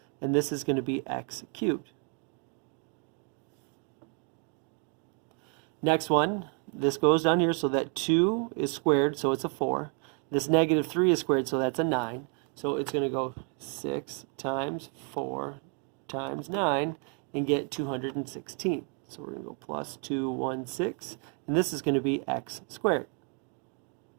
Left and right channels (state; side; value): quieter; left; 39.9 dB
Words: and this is going to be x cubed. Next one, this goes down here, so that 2 is squared, so it's a 4. This negative 3 is squared, so that's a 9. So it's going to go 6 times 4 times 9 and get 216. So we're going to go plus 216, and this is going to be x squared.